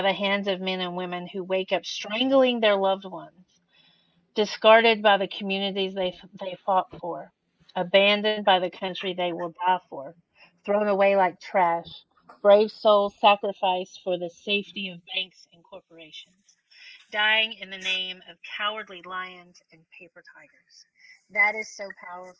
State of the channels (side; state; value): both; identical; correlation 1.00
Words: the hands of men and women who wake up strangling their loved ones, discarded by the communities they fought for, abandoned by the country they will die for, thrown away like trash, brave souls sacrificed for the safety of banks and corporations, dying in the name of cowardly lions and paper tigers. That is so